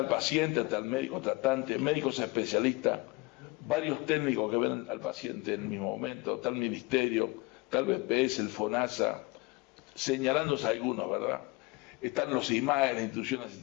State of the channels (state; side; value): quieter; right; 24.2 dB